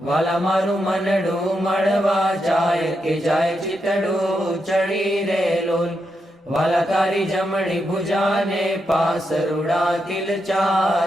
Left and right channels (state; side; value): normal; both; correlation 0.84